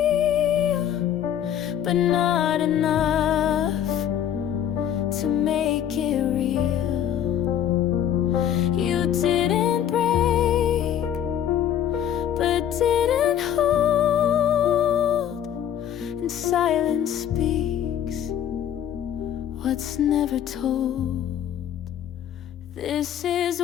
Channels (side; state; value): right; quieter; 10.0 dB